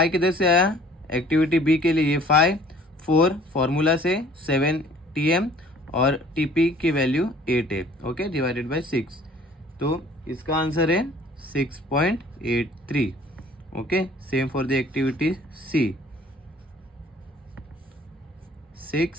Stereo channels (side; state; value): both; normal; correlation 0.53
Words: किधर से आया, एक्टिविटी B के लिए ये 5, 4 फॉर्मूला से, 7 TM और TP की वैल्यू 8 है। ओके, डिवाइडेड बाय 6, तो इसका आंसर है 6.83। Okay, same for the activity C, 6